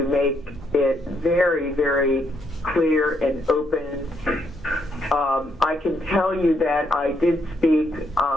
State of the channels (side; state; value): both; normal; correlation 0.74